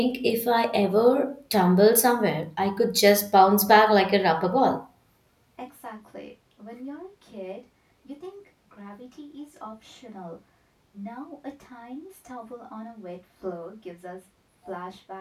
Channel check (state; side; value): identical; both; correlation 1.00